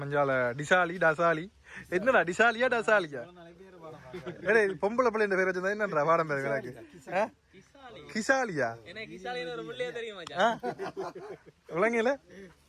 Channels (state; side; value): identical; both; correlation 1.00